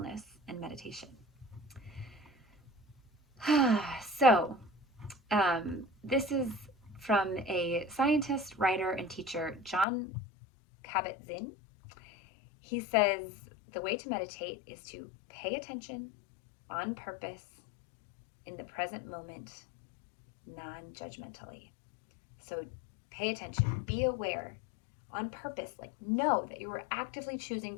and meditation. So, this is from a scientist, writer, and teacher, John Kabat-Zinn. He says the way to meditate is to pay attention on purpose in the present moment, non-judgmentally. So pay attention, be aware on purpose, like know that you are actively choosing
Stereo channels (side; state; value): right; drops out; at 9.9 s